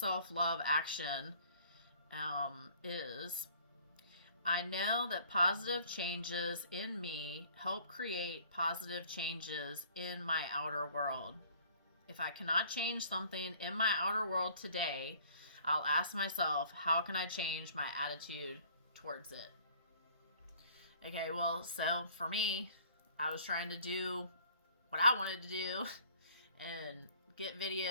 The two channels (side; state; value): both; inverted; correlation -0.54